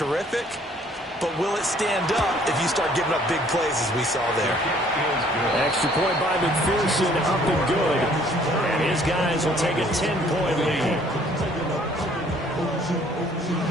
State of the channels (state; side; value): normal; both; correlation 0.60